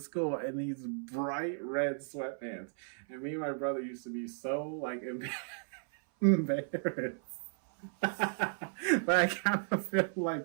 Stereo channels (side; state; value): left; silent; 55 dB below the other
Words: school in these bright red sweatpants. And me and my brother used to be so like embarrassed. But I kind of feel